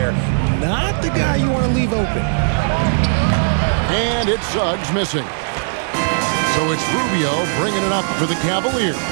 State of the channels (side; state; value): left; silent; 67 dB below the other